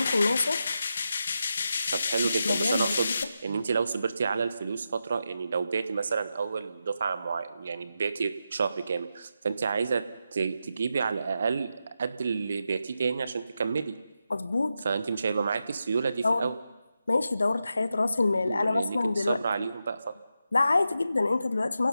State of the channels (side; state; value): both; inverted; correlation -0.87